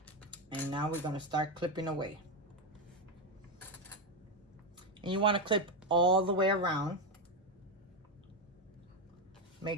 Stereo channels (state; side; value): normal; both; correlation 0.09